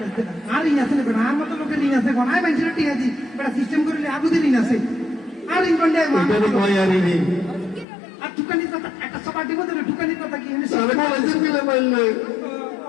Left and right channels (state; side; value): drops out; right; at 7.9 s